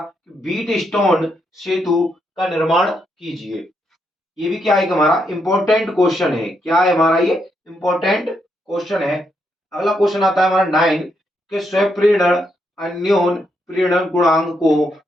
व्हीट स्टोन सेतु का निर्माण कीजिए। ये भी क्या है कि हमारा इंपॉर्टेंट क्वेश्चन है। क्या है हमारा ये इंपॉर्टेंट क्वेश्चन है। अगला क्वेश्चन आता है हमारा 9 के स्वप्रेरण अन्योन प्रेरण गुणांक को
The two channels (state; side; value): normal; both; correlation 0.79